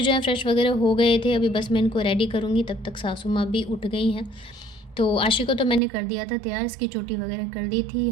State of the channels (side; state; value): left; drops out; at 5.8 s